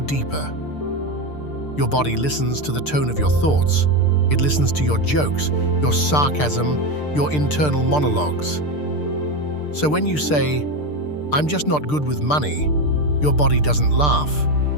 Your body listens to the tone of your thoughts. It listens to your jokes, your sarcasm, your internal monologues. So when you say, I'm just not good with money, your body doesn't laugh.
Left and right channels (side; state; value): right; late; 6.7 ms